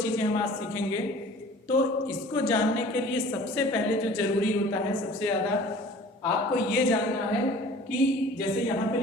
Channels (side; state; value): both; normal; correlation 0.46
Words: हम आज सीखेंगे। तो इसको जानने के लिए सबसे पहले जो जरूरी होता है, सबसे ज़्यादा आपको ये जानना है कि जैसे यहाँ पे